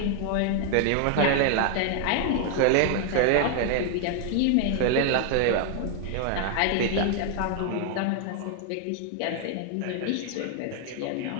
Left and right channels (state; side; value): different; both; correlation 0.00